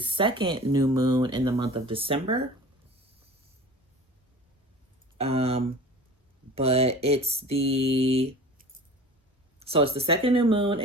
new moon in the month of December. But it's the second new moon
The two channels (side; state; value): both; normal; correlation 0.40